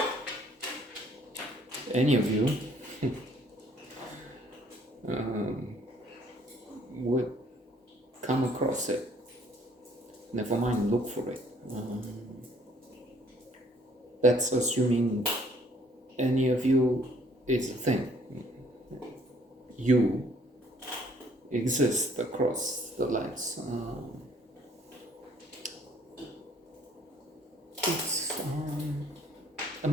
any of you would come across it. Never mind look for it. That's assuming any of you is a thing. You exist across the lands. It's a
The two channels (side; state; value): both; normal; correlation 0.61